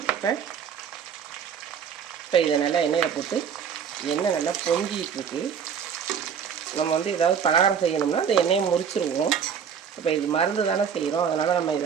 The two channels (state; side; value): quieter; left; 7.4 dB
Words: இப்போ இதை நல்லா எண்ணெயில் போட்டு எண்ணெய் நல்லா பொங்கிட்டு இருக்கு. நம்ம வந்து ஏதாவது பலகாரம் செய்யணும்னா அந்த எண்ணெயை முறிச்சிருவோம். இப்போ இது மருந்து தானே செய்கிறோம், அதனால் நம்ம